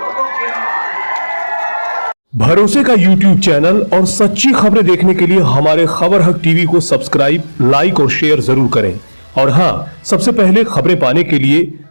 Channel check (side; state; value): both; inverted; correlation -1.00